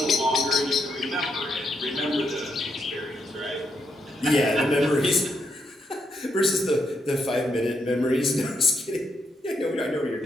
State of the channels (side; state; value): both; normal; correlation 0.79